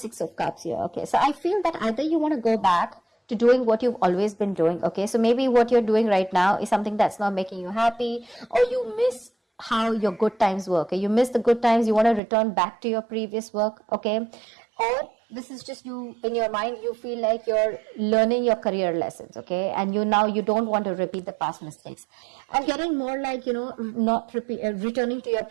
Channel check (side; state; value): left; drops out; at 12.2 s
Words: of Cups here. Okay, so I feel that either you want to go back to doing what you've always been doing. Okay, so maybe what you're doing right now is something that's not making you happy, or you miss how your good times were. Okay, you miss the good times, you want to return back to your previous work. Okay, or this is just you in your mind, you feel like you're learning your career lessons. Okay, and you don't want to repeat the past mistakes. I'm getting more like, not returning to your